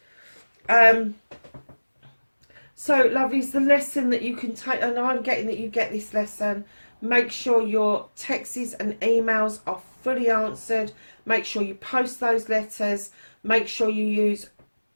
So, lovelies, the lesson that you can take, and I'm getting that you get this lesson, make sure your texts and emails are fully answered. Make sure you post those letters. Make sure you use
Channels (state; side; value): inverted; both; correlation -1.00